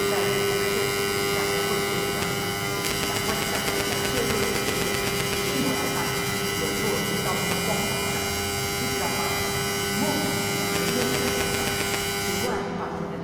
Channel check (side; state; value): both; identical; correlation 1.00